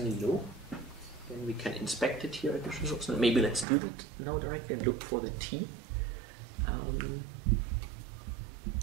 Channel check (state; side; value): drops out; left; at 3.7 s